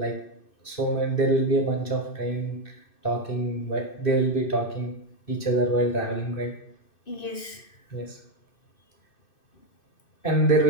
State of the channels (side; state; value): right; late; 2.6 ms